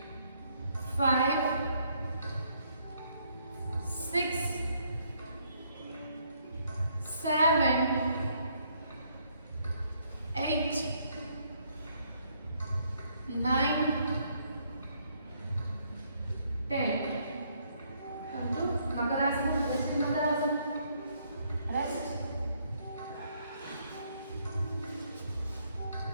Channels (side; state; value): both; inverted; correlation -0.70